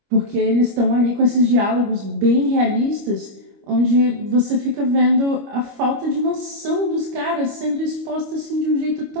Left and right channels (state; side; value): late; left; 25 ms